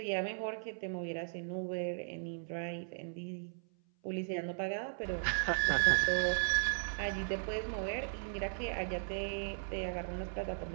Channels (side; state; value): left; silent; 53 dB below the other